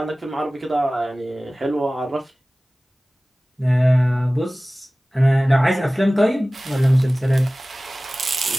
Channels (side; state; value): both; normal; correlation 0.98